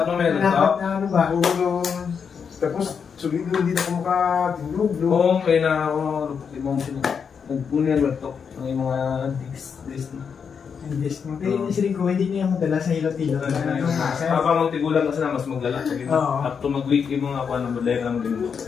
mo meron na ano ba? Oo, tapos sulido hindi na ako makatindog. Oo, kaya na ako emotion. Nagpunin ba ito? Ang mga disc. Hindi ko, hindi niya madala sa hilot-hilot. Habang magtigulan kasi na mas maglala. Up to mag-week yung mga ako, model lang din mo.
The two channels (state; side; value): quieter; right; 6.5 dB